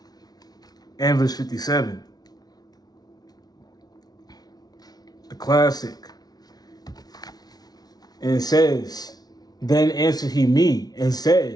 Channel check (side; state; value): right; late; 0.19 ms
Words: and verse 57. The classic. And it says, Then answered he me and